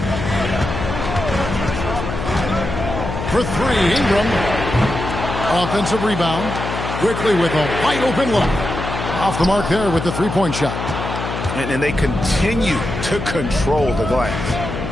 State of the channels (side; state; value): left; noise; hum, 5 dB below the sound